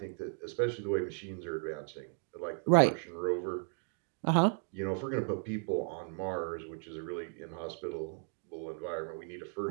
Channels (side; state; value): left; silent; 54 dB below the other